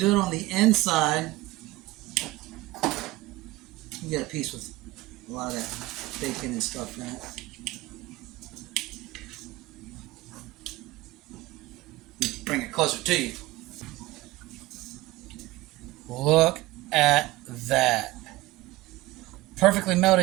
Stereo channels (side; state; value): left; quieter; 19.1 dB